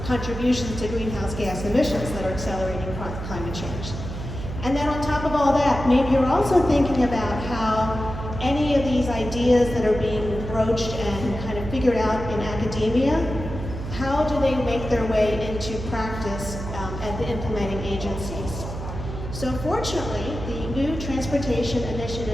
contributions to greenhouse gas emissions that are accelerating climate change. And then on top of all that, maybe you're also thinking about how any of these ideas that are being broached and kind of figured out in academia how do they make their way into practice at the implementing agencies? So fortunately, the new Transportation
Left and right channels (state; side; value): noise; right; hum, 7 dB below the sound